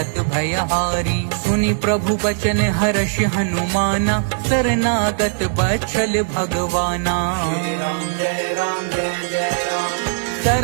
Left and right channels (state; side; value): silent; left; digital silence